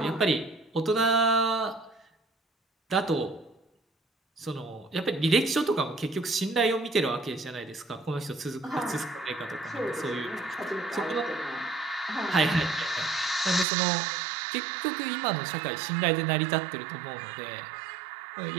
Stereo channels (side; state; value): left; drops out; at 13.7 s